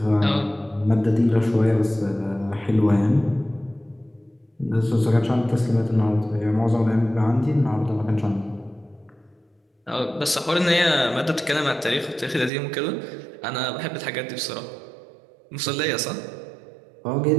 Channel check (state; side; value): drops out; left; at 12.5 s